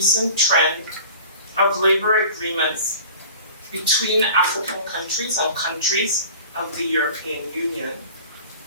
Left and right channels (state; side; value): inverted; both; correlation -0.41